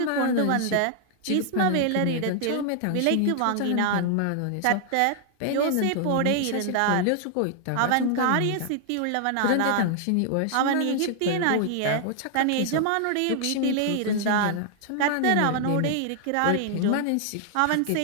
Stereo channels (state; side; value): different; both; correlation 0.00